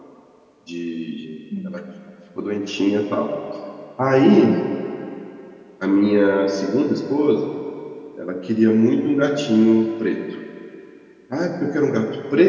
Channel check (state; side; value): identical; both; correlation 1.00